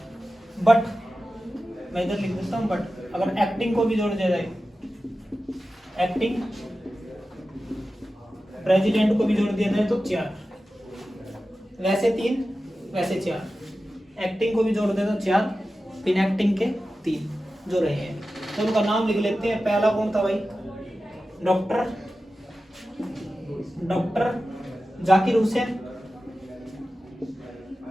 बट मैं इधर लिख देता हूँ, बट अगर एक्टिंग को भी जोड़ दिया जाए, एक्टिंग प्रेसिडेंट को भी जोड़ दिया जाए तो 4, वैसे 3, वैसे 4, एक्टिंग को भी जोड़ दे तो 4, बिन एक्टिंग के 3 जो रहे हैं। तो उनका नाम लिख लेते हैं। पहला कौन था भाई? डॉक्टर जाकिर हुसैन,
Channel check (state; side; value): normal; both; correlation 0.94